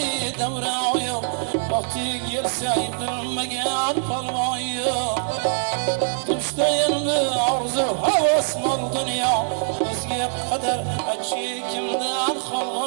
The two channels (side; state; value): left; silent; 59 dB below the other